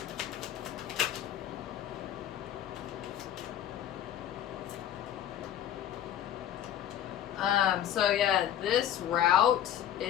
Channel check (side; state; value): right; quieter; 10.9 dB